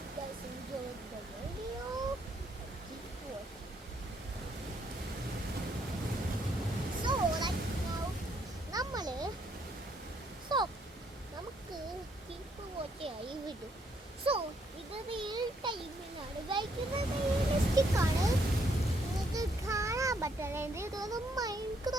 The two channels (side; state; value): both; normal; correlation 0.71